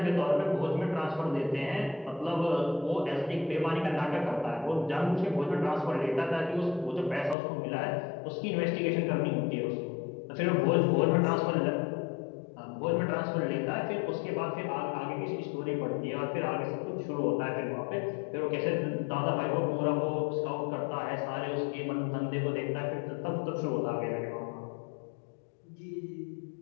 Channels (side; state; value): right; drops out; at 7.4 s